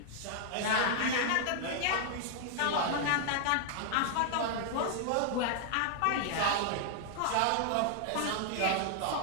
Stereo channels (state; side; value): different; both; correlation 0.00